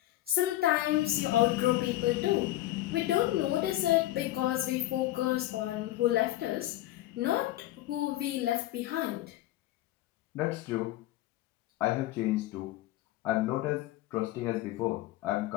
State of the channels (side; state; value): right; quieter; 15.5 dB